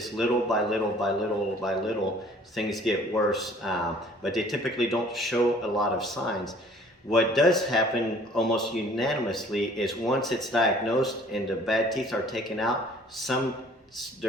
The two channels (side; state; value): both; normal; correlation 0.54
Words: little by little by little by little things get worse, but they typically don't show a lot of signs. What does happen almost unanimously is once it's diagnosed and the bad teeth are taken out,